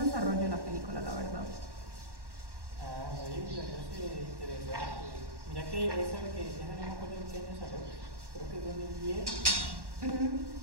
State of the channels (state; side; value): late; left; 1.1 ms